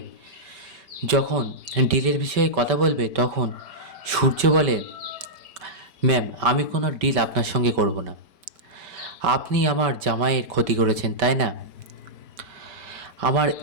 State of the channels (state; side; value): late; left; 5.2 ms